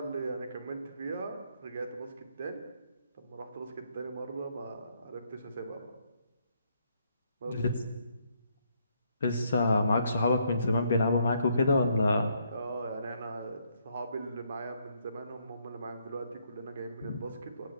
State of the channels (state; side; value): inverted; both; correlation -0.72